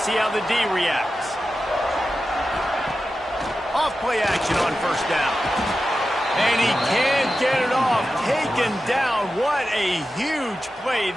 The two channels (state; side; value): normal; both; correlation 0.92